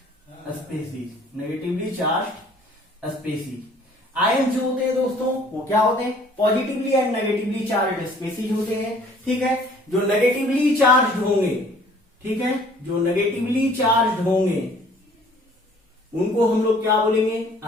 species, negatively charged species। Ion जो होते हैं दोस्तों वो क्या होते हैं? Positively and negatively charge species होते हैं, ठीक है। जो नेगेटिवली चार्ज होंगे, ठीक है, जो नेगेटिवली चार्ज होंगे उनको हम लोग क्या बोलेंगे?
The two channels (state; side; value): normal; both; correlation 0.56